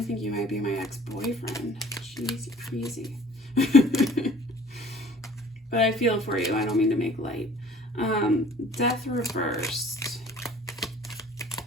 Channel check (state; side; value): normal; both; correlation 0.51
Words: think you might be my ex-boyfriend. Jeez, you're crazy. But I feel for you. I don't mean to make light. Death reversed.